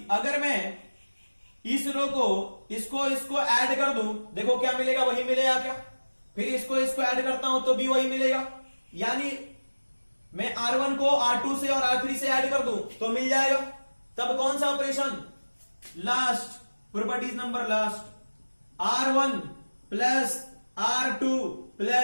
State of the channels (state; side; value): inverted; both; correlation -1.00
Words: अगर मैं इस रो को इसको ऐड कर दूं, देखो क्या मिलेगा, वही मिलेगा क्या, फिर इसको ऐड करता हूं तो भी वही मिलेगा, यानी मैं R1 को R2 से और R3 से ऐड कर दूं तो मिल जाएगा। तब कौन सा operation, last, properties number last, R1 plus R2